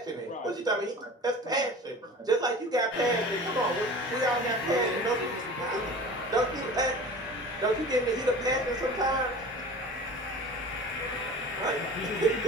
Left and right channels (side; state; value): both; normal; correlation 0.39